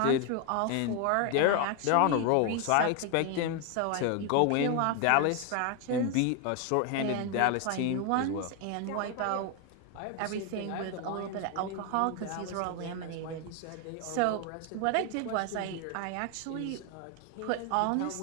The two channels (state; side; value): different; both; correlation 0.01